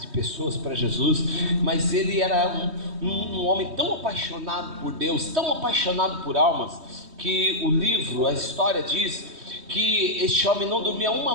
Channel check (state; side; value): late; left; 3.2 ms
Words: de pessoas para Jesus, mas ele era um homem tão apaixonado por Deus, tão apaixonado por almas, que o livro, a história diz que este homem não dormia uma